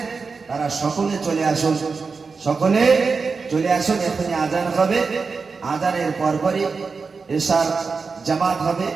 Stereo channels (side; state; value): left; quieter; 4.8 dB